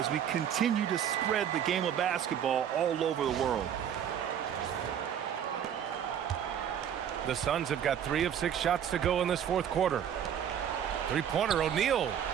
we continue to spread the game of basketball all over the world. The Suns have got 3 of 6 shots to go in this fourth quarter. Three-pointer, O'Neal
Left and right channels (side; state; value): left; quieter; 9.2 dB